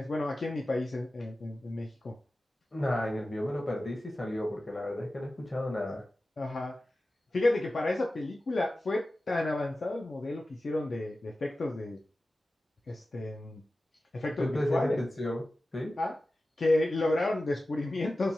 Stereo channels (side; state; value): both; normal; correlation 0.95